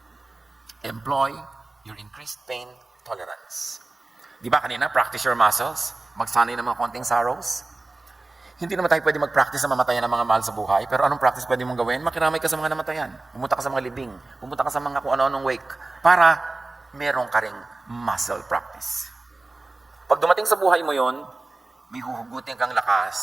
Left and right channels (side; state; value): left; quieter; 3.1 dB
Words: Employ your increased pain tolerance. Di ba kanina, practice your muscles? Magsanay ng mga konting sorrows? Hindi naman tayo pwede mag-practice na mamatayan ng mga mahal sa buhay, pero anong practice pwede mong gawin? Makiramay ka sa mga namatayan. Pumunta ka sa mga libing. Pumunta ka sa mga kung ano-anong wake. Para meron ka ring muscle practice. Pag dumating sa buhay mo yon, may huhugutin kang